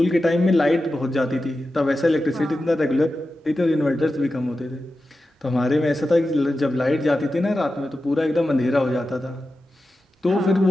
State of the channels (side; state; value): both; normal; correlation 0.92